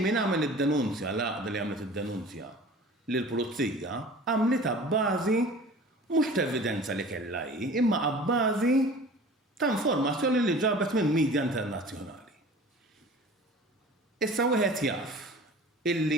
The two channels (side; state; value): both; normal; correlation 0.42